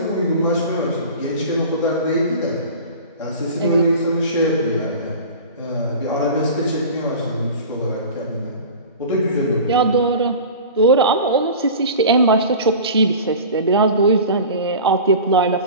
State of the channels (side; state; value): both; inverted; correlation -0.36